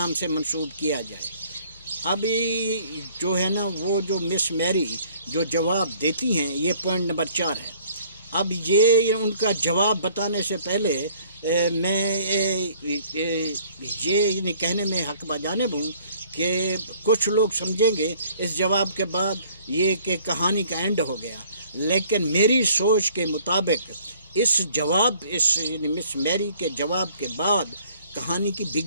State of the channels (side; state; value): both; inverted; correlation -0.57